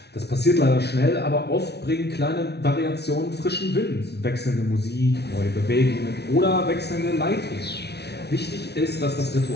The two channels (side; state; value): right; late; 0.49 ms